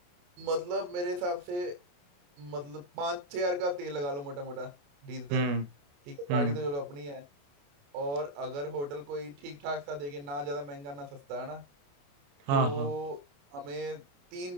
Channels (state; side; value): late; left; 28 ms